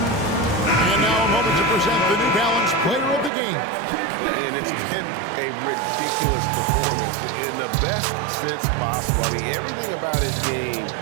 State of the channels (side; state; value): left; drops out; at 3.3 s